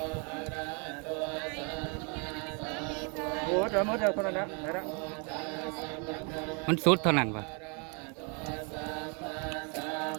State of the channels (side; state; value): left; quieter; 35.1 dB